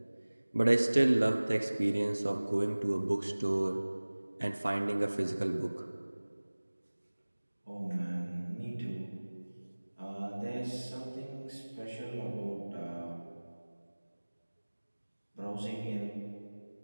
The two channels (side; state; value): both; inverted; correlation -1.00